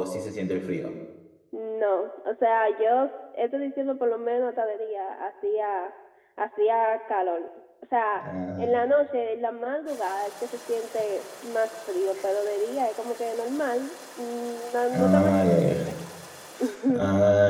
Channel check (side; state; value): both; identical; correlation 1.00